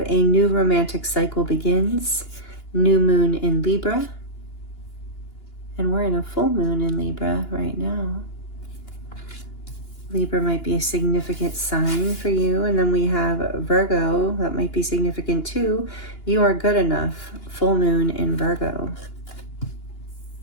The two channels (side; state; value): right; late; 2.9 ms